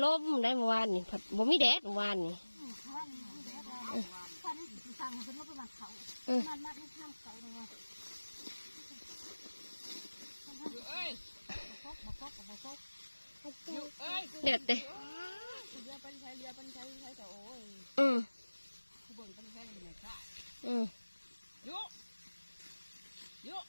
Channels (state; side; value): inverted; both; correlation -1.00